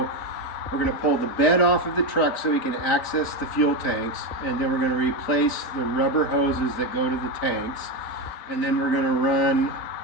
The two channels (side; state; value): right; late; 4.1 ms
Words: pull the bed off of the truck so we can access the fuel tanks, and then we're going to replace the rubber hoses that go to the tanks, and then we're going to run